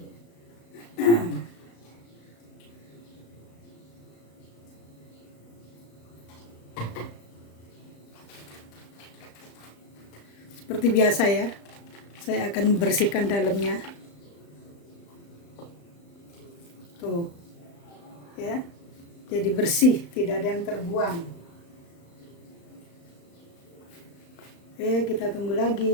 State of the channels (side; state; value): right; late; 35 ms